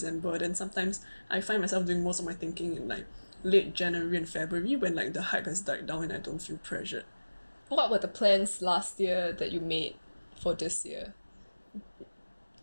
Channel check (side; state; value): both; inverted; correlation -1.00